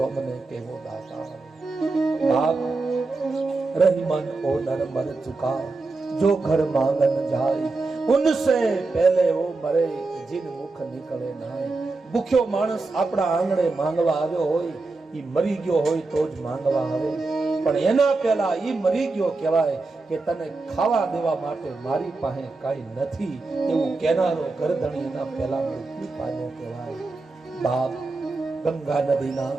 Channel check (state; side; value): quieter; left; 3.6 dB